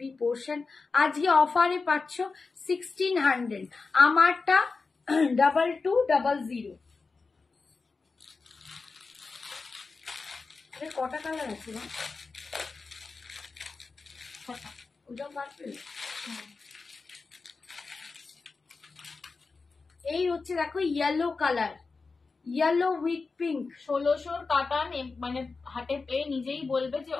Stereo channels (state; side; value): quieter; right; 4.2 dB